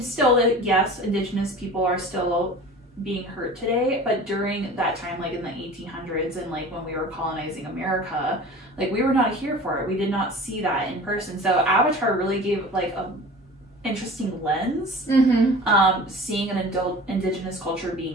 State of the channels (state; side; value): normal; both; correlation 0.40